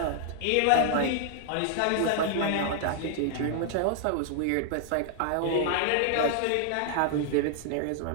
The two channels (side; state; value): both; different; correlation -0.01